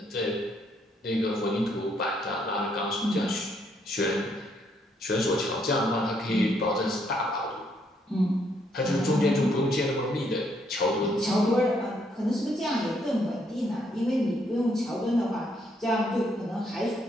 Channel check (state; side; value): normal; both; correlation 0.72